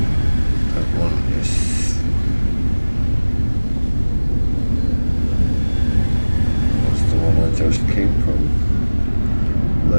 That one is... What's the one I just came from?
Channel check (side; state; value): both; inverted; correlation -1.00